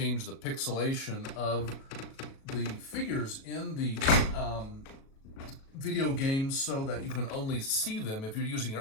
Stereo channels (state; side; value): late; right; 37 ms